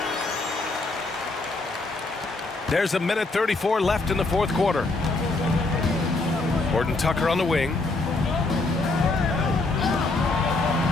There's a minute 34 left in the fourth quarter. Horton Tucker on the wing.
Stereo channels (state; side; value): quieter; right; 3.3 dB